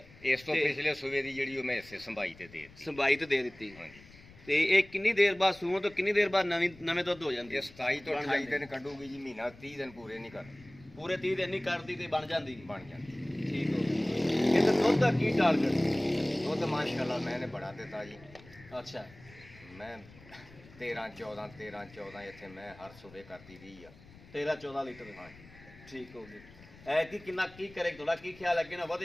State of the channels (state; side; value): noise; left; rumble, 22 dB below the sound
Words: ਇਸ ਤੋਂ ਤੇ- ਪਿਛਲੇ ਸੂਏ ਦੀ ਜਿਹੜੀ ਉਹ ਮੈਂ ਹਿੱਸੇ ਸੰਭਾਈ ਤੇ ਦੇ ਦਿੱਤੀ। ਸੰਭਾਈ ਤੇ ਦੇ ਦਿੱਤੀ। ਹਾਂਜੀ ਤੇ ਇਹ ਕਿੰਨੀ ਦੇਰ ਬਾਅਦ ਸੂਣ ਤੋਂ ਕਿੰਨੀ ਦੇਰ ਬਾਅਦ ਨਵੇਂ ਦੁੱਧ ਹੋ ਜਾਂਦੀ ਇਹ ਹੈ? 27 ਤੋਂ ਬਣ 28 ਜਾਂਦੀ। ਦਿਨ ਕੱਢੂਗੀ ਜੀ, ਮਹੀਨਾ 30 ਦਿਨ ਪੂਰੇ ਨਹੀਂ ਕਰਦੀ, ਪੂਰੇ 30 ਦਿਨ ਨਹੀਂ ਕਰਦੀ ਤੇ ਬਣ ਜਾਂਦੀ। ਬਣ ਜਾਂਦੀ। ਠੀਕ ਹੋ ਗਿਆ। ਇਹਦੇ ਦੁੱਧ ਦਾ ਕੀ ਟਾਰਗੇਟ? ਦੁੱਧ ਮਾਸ਼ਾਅੱਲਾ ਮੈਨੇ ਬੜਾ ਦਿੱਤਾ ਜੀ। ਅੱਛਾ ਮੈਂ 13 14 ਇੱਥੇ ਮੈਂ ਹਰ ਸੂਬੇ ਕਰਦੀ ਰਹੀ ਆ। 13 14 ਲੀਟਰ। ਹਾਂਜੀ ਠੀਕ ਹੋ ਗਿਆ। ਐ ਕਿੰਨਾ ਕੀ ਕਰੇ ਤੁਹਾਡਾ ਕੀ ਖਿਆਲ ਹੈ ਕਿ ਨਾ